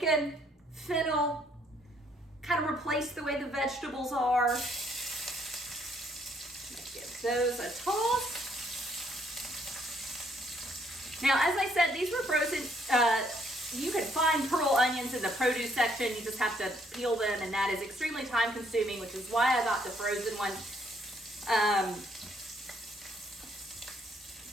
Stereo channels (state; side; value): normal; both; correlation 0.68